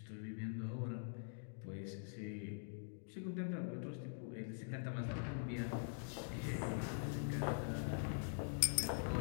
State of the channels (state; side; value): silent; right; digital silence